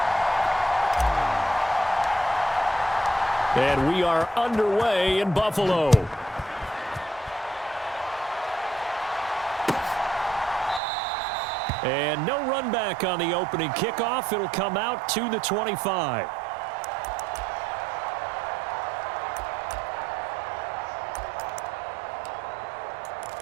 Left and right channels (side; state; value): left; drops out; at 10.8 s